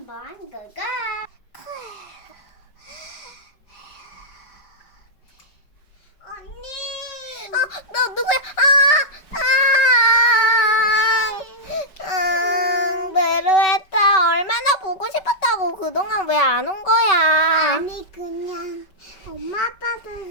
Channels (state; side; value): late; right; 5.2 ms